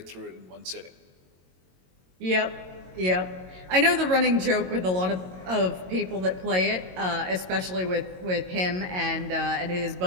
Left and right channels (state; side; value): late; left; 22 ms